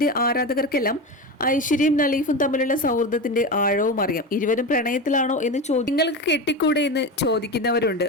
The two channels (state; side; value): normal; both; correlation 0.22